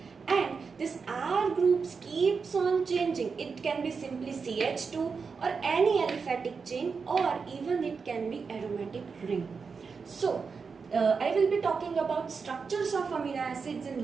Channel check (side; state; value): left; quieter; 5.3 dB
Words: And this R groups keeps on changing. It can be simply CH2 or any aliphatic chain or even it can be aromatic ring. So I will be talking about structures of amino acids